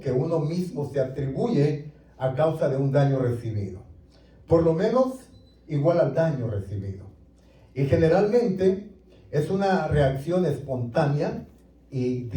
uno mismo se atribuye a causa de un daño recibido, por lo menos igual al daño recibido. Y generalmente es una reacción espontánea y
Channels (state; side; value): identical; both; correlation 1.00